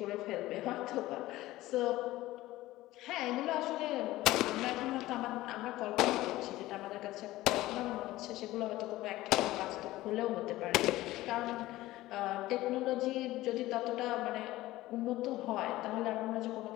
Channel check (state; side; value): quieter; right; 16.9 dB